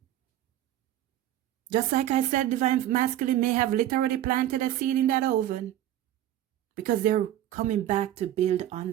Just like I said, divine masculine may have literally planted a seed in that oven. Because they're coming back to build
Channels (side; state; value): left; quieter; 12.6 dB